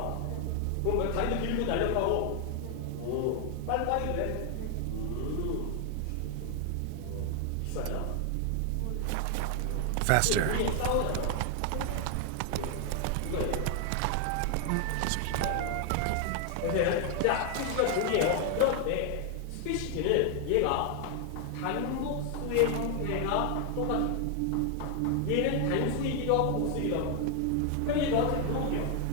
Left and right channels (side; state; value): both; different; correlation 0.00